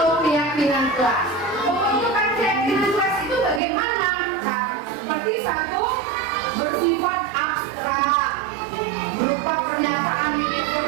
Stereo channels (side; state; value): left; drops out; at 3.6 s